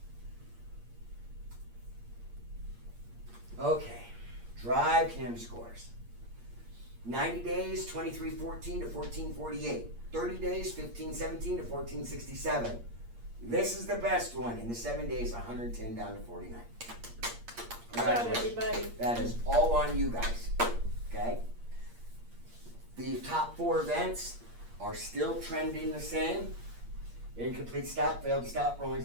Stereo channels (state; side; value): late; left; 8.6 ms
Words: Okay, drive cam scores. 90 days, 2314 to 1448. 30 days, 1517 to 1467. This is the best one. In the 7 days, 110 down to 49. Good job, Congratulations. everybody. That is all on you guys, okay? The top 4 events are still trending the same. Incomplete stop, failed stop, rolling